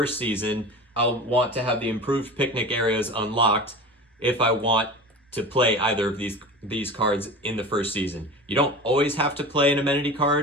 season, I'll want to have the Improved Picnic Areas unlocked if I want to play either of these cards in the first season. You don't always have to play an amenity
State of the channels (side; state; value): both; normal; correlation 0.33